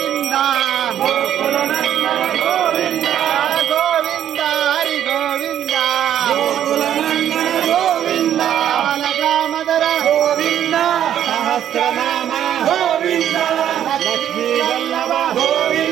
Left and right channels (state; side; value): quieter; left; 10.5 dB